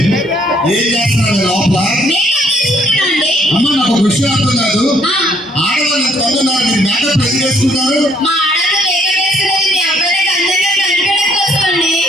ఏం చేస్తున్నారు లోపల? అమ్మ నాకు ఒక విషయం అర్థం కాదు. ఆడవాళ్ళు కొంటున్నారు, మీరు మేకప్ ఎందుకు వేసుకుంటారు?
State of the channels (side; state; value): both; normal; correlation 0.65